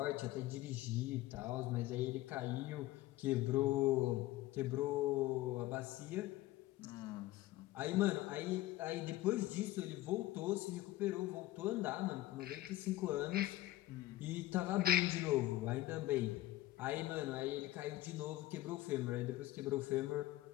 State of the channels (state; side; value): quieter; right; 16.2 dB